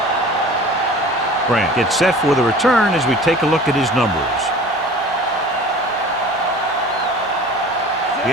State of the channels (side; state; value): both; normal; correlation 0.42